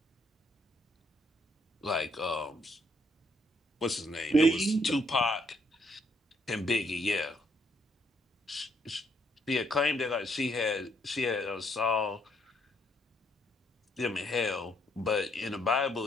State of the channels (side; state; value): both; normal; correlation 0.71